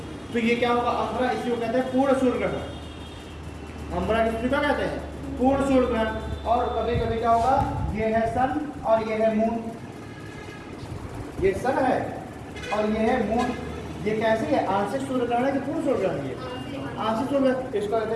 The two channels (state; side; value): identical; both; correlation 1.00